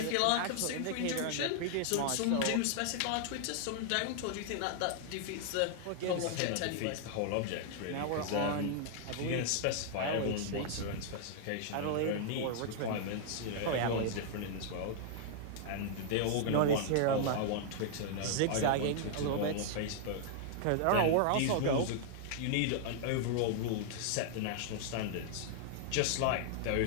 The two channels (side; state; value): both; different; correlation -0.01